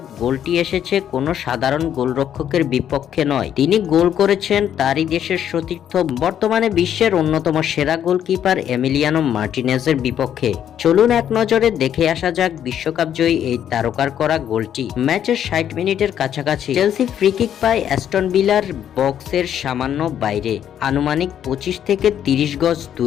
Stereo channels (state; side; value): quieter; right; 9.8 dB